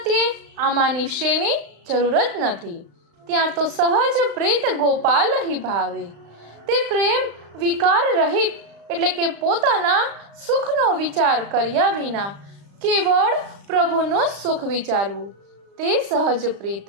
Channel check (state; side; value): late; left; 35 ms